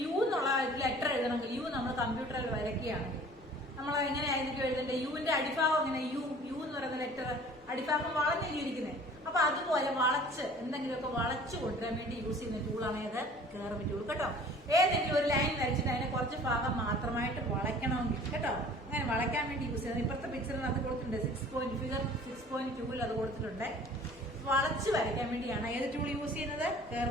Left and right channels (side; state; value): both; normal; correlation 0.48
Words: യു എന്നുള്ള ലെറ്റർ എഴുതണമെങ്കിൽ, യു നമ്മൾ കമ്പ്യൂട്ടറിൽ വരയ്ക്കുകയാണെങ്കിൽ നമ്മൾ എങ്ങനെയായിരിക്കും എഴുതേണ്ടത്? യുവിന്റെ അടിഭാഗം എങ്ങനെ, യു എന്ന് പറയുന്ന ലെറ്റർ അടിഭാഗം വളഞ്ഞിരിക്കുന്നത്. അപ്പൊ അതുപോലെ വളച്ച് എന്തെങ്കിലുമൊക്കെ വളച്ചു കൊണ്ടുവരാൻ വേണ്ടി യൂസ് ചെയ്യുന്ന ടൂളാണ് ഏത്? Curve tool. കേട്ടോ, ഏതെങ്കിലും ഒരു ലൈൻ വരച്ചിട്ട് അതിനെ കുറച്ച് ഭാഗം മാത്രമായിട്ട് വളയ്ക്കണമെങ്കിൽ, കേട്ടോ, അങ്ങനെ വളയ്ക്കാൻ വേണ്ടി യൂസ് ചെയ്യുന്നത്. ഇപ്പോഴത്തെ പിക്ചറിനകത്ത് കൊടുത്തിട്ടുണ്ട്, 6.2 അത് കൊടുത്തിട്ടുണ്ട്. വളച്ച് വരയ്ക്കാൻ വേണ്ടിയാണ് ഏത് ടൂൾ യൂസ് ചെയ്യുന്നത്?